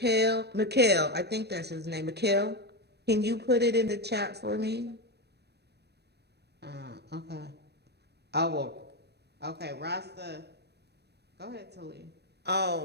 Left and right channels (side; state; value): left; late; 0.48 ms